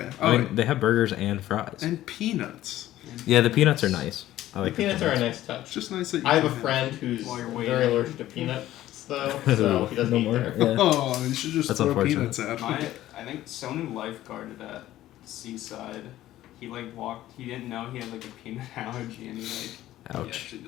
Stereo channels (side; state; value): right; quieter; 14.2 dB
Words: I Oh, mean, they have burgers and fries. and peanuts. Yeah, the peanuts are nice. I The like peanuts are a nice touch. It's just nice that you I have a can friend who's While you're very waiting. allergic to peanuts, though, so he doesn't No eat more? there. Yeah. Oh, you should just That's throw unfortunate. peanuts at My, him. I think someone lifeguarded at Seaside. He walked. He didn't know he had a peanut allergy, and he Ouch. actually